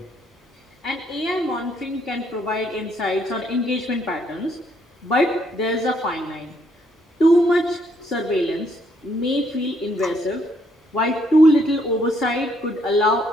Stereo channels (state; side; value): normal; both; correlation 0.71